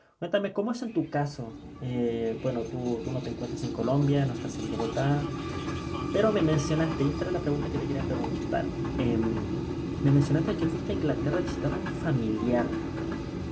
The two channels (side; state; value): both; identical; correlation 1.00